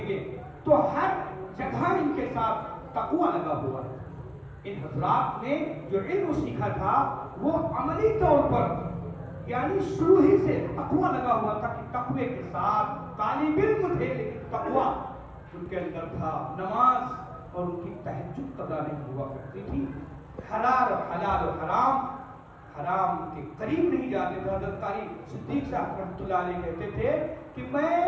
گے تو ہر جگہ ان کے ساتھ تقویٰ لگا ہوا ہے. ان حضرات نے جو علم سیکھا تھا وہ عملی طور پر یعنی شروع ہی سے تقویٰ لگا ہوا تھا کہ تقوی کے ساتھ طالب علم تھے لیکن تقویٰ ان کے اندر تھا. نماز اور ان کی تہجد قضا نہیں ہوا کرتی تھی. حلال و حرام کے قریب نہیں جاتے تھے. حضرت قاری صدیق صاحب رحمۃ اللہ علیہ کہتے تھے کہ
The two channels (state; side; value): identical; both; correlation 1.00